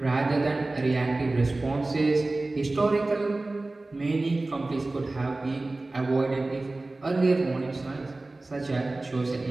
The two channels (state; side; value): quieter; left; 3.0 dB